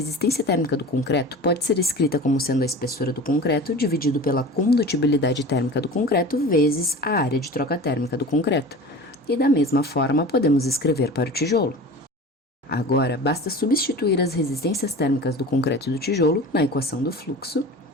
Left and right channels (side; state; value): both; normal; correlation 0.36